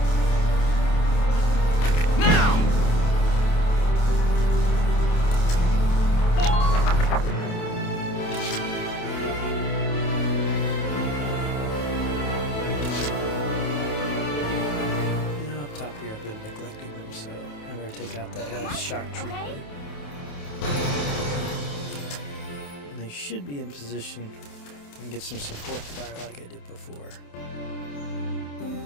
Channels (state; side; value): late; right; 28 ms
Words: Shock trooper. And they should be in position and get some support fire like I did before.